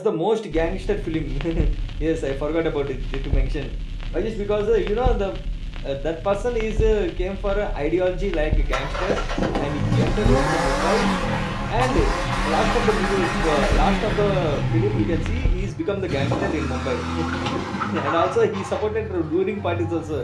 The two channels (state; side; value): identical; both; correlation 1.00